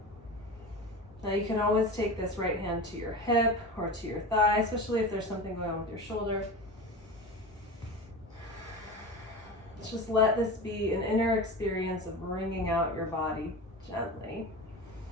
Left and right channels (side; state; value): both; normal; correlation 0.29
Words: Now you can always take this right hand to your hip or to your thigh, especially if there's something going on with your shoulder. Just let this be an inner experience of wringing out your body gently.